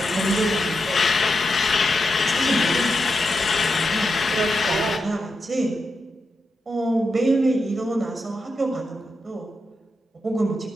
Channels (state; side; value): normal; both; correlation 0.87